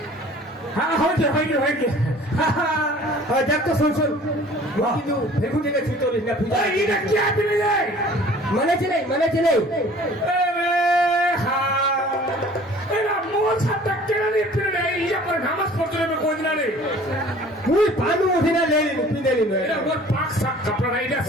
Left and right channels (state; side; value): normal; both; correlation 0.49